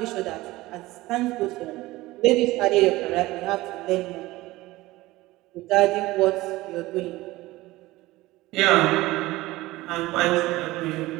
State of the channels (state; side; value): quieter; left; 18.7 dB